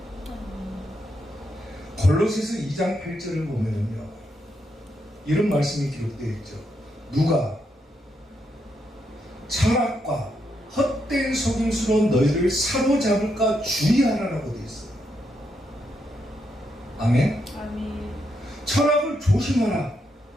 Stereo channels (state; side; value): normal; both; correlation 0.80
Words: 골로새서 2장 8절을 보면요, 이런 말씀이 기록되어 있죠. 누가 철학과 헛된 속임수로 너희를 사로잡을까 주의하라라고 되어 있어요. 아멘. 아멘. 철학을 조심하라.